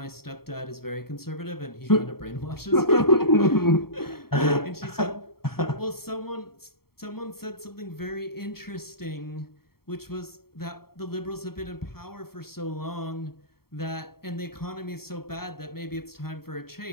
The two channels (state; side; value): late; right; 0.94 ms